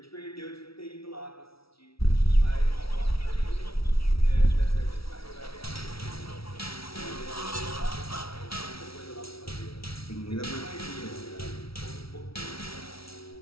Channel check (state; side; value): late; right; 0.75 ms